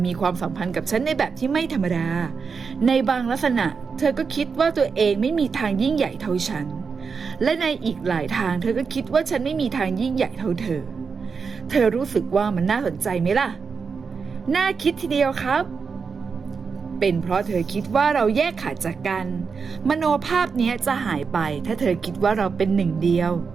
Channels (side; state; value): left; quieter; 5.5 dB